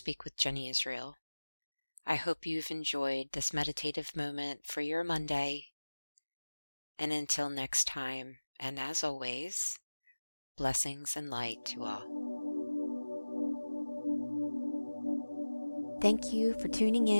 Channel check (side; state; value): both; inverted; correlation -1.00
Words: with Jenny Israel. I hope you've enjoyed this meditative moment for your Monday. And until next time, and as always, blessings and light to all. Thank you for tuning